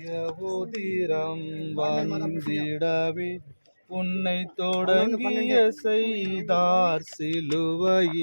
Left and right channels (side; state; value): both; inverted; correlation -1.00